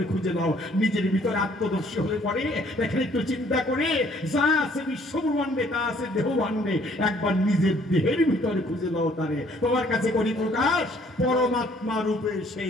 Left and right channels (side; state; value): both; normal; correlation 0.61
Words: খুঁজে নাও। নিজের ভিতরে আত্মদর্শী হয়ে পড়ে দেখেন, একটু চিন্তা করে যা আছে বিশ্বব্রহ্মাণ্ডে তা আছে দেহভাণ্ডে, একবার নিজের দেহের ভিতরে খুঁজে নাও তারে। তোমার কাছে করি প্রকাশ, পরমাত্মা রূপে